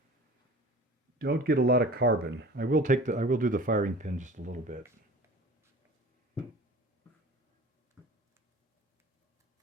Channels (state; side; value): normal; both; correlation 0.41